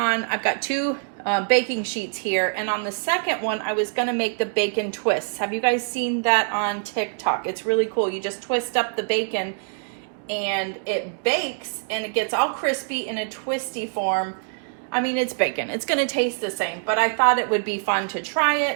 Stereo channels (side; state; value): left; silent; 62 dB below the other